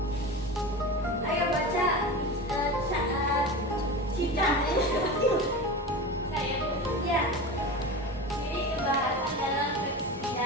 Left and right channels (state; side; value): normal; both; correlation 0.28